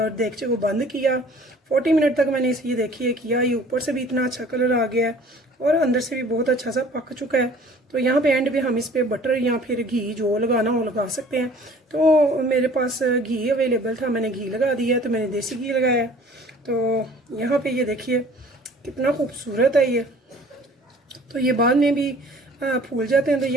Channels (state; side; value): normal; both; correlation 0.50